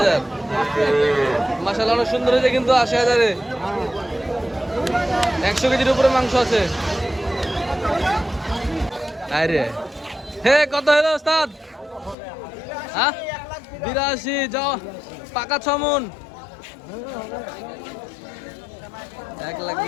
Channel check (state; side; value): drops out; right; at 12.2 s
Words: মাশাআল্লাহ অনেক সুন্দর হয়েছে কিন্তু ৮০,০০০-এ ১০০ কেজির উপরে মাংস আছে। আরে হে কত হলো ওস্তাদ? হ্যাঁ ৮২ যাও পাকা ৬ মণ